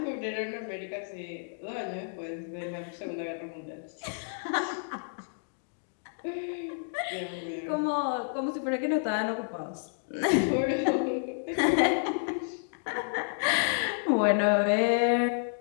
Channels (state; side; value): silent; right; digital silence